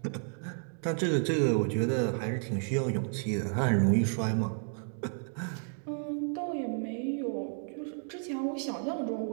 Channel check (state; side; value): silent; left; 57 dB below the other